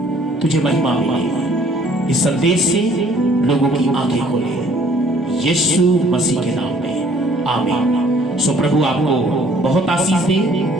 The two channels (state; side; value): normal; both; correlation 0.58